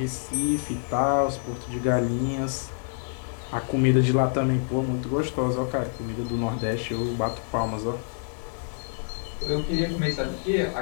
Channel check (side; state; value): right; silent; digital silence